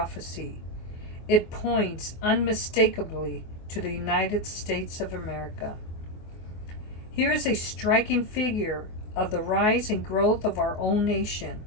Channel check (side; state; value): right; late; 24 ms